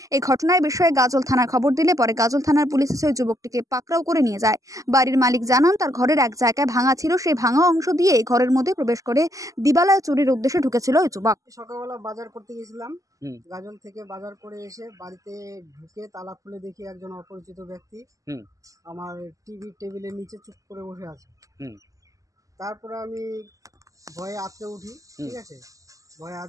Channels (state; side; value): late; left; 0.16 ms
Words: এই ঘটনার বিষয়ে গাজল থানার খবর দিলে পরে গাজল থানার পুলিশ এসে ওই যুবকটিকে পাকড়াও করে নিয়ে যায়। বাড়ির মালিক জানান তার ঘরের এক জায়গায় ভাঙা ছিল, সেই ভাঙা অংশ দিয়ে ঘরের মধ্যে প্রবেশ করে দিবালয়ে চুরির উদ্দেশ্যে ঢুকেছিল ওই যুবক। সকালবেলা বাজার করতে গেছিলাম, গাজল থেকে বাজার করে এসে বাড়িতে ঢুকে তালা খুলে দেখি একজন অপরিচিত ব্যক্তি আমার টেবিলের নিচে চুপ করে বসে আছে। তারপরে আমি ভয়ে আঁতকে উঠি, ঠিক আছে, ভয়ে